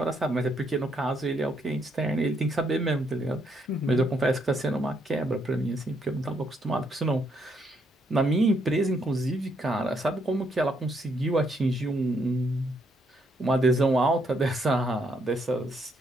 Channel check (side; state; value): both; normal; correlation 0.74